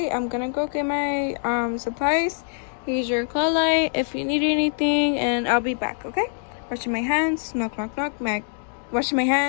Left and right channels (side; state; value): right; silent; 60 dB below the other